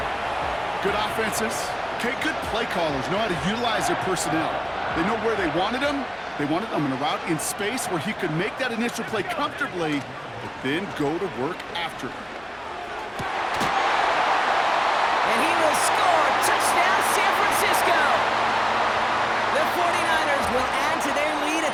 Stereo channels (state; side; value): identical; both; correlation 1.00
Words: Good offenses. Okay, good play callers know how to utilize their personnel. They know where they wanted them. They wanted them in a route in space where he could make that initial play comfortably, but then go to work after it. And he will score. Touchdown, San Francisco. The 49ers will add to their lead at